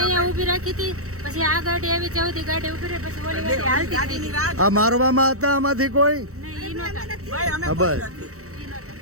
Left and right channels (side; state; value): left; late; 0.65 ms